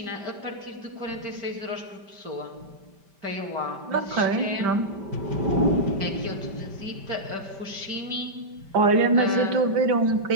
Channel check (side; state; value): left; late; 5.1 ms